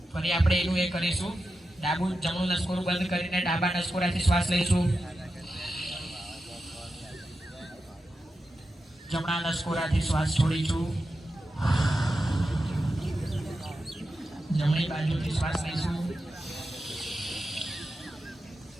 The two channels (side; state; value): both; normal; correlation 0.90